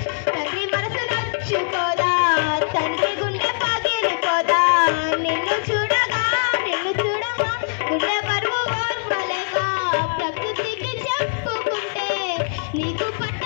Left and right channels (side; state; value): right; silent; digital silence